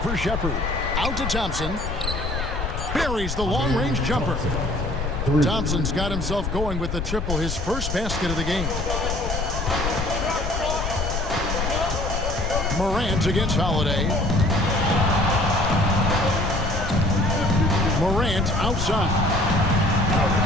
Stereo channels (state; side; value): noise; left; rumble, 3 dB below the sound